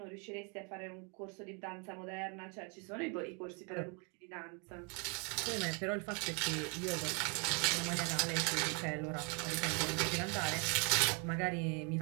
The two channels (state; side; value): quieter; left; 35.2 dB